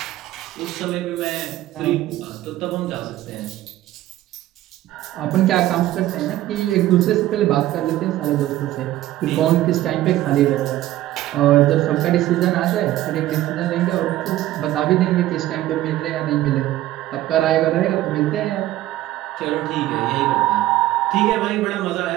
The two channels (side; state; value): left; quieter; 14.8 dB